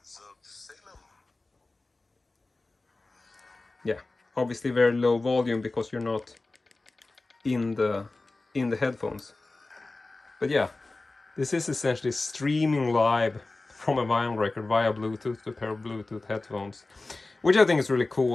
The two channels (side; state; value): right; quieter; 3.2 dB